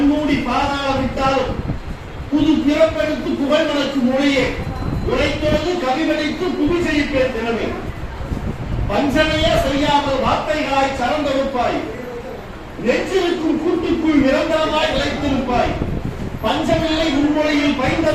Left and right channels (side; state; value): both; identical; correlation 1.00